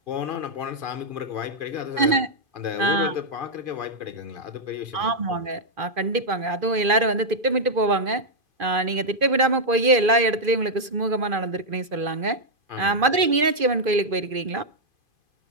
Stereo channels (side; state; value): left; late; 2.5 ms